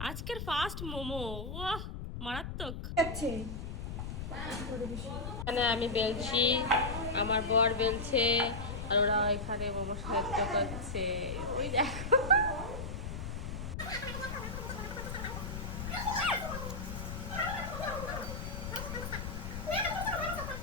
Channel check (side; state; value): left; noise; rumble, 6 dB below the sound